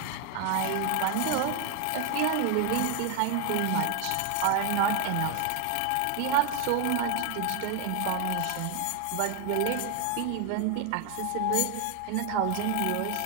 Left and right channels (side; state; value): both; different; correlation 0.01